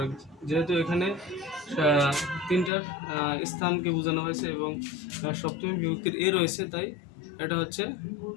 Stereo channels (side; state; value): right; drops out; at 2.7 s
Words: যেহেতু এখানে তিনটার স্থানকে বোঝানো হয়েছে এবং সপ্তমী বিভক্তির এ রয়েছে, তাই এটা হচ্ছে